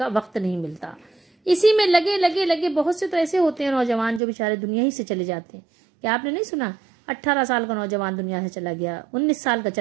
وقت نہیں ملتا۔ اسی میں لگے بہت سے تو ایسے ہوتے ہیں نوجوان جو بیچارے دنیا ہی سے چلے جاتے ہیں۔ کیا آپ نے نہیں سنا 18 سال کا نوجوان دنیا سے چلا گیا، 19 سال کا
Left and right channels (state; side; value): drops out; left; at 4.2 s